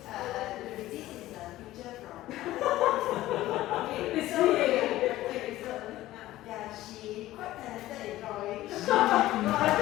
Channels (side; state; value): right; quieter; 15.7 dB